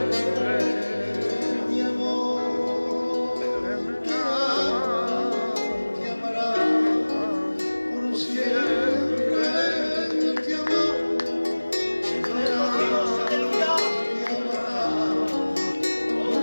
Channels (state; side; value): inverted; both; correlation -1.00